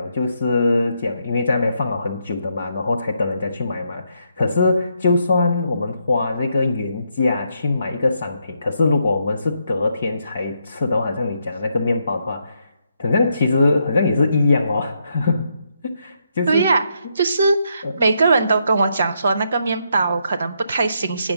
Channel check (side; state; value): both; inverted; correlation -0.78